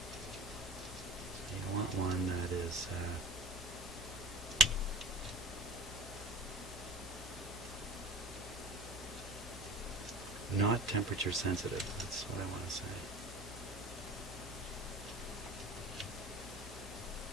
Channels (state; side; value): normal; both; correlation 0.36